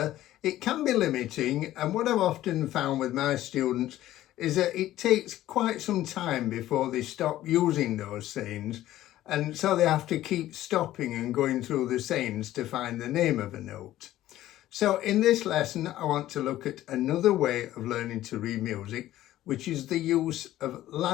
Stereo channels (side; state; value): right; quieter; 14.2 dB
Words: it can be limiting, and what I've often found with my students is that it takes quite some time before they stop using those sayings, and so they have to keep stopping and going through the sayings to find the name of a note. So in this lesson, I want to look at another way of learning to read music, which is the use of